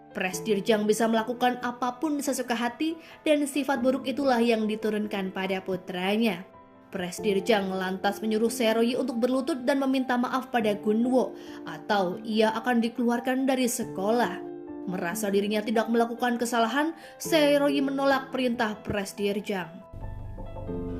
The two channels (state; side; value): identical; both; correlation 1.00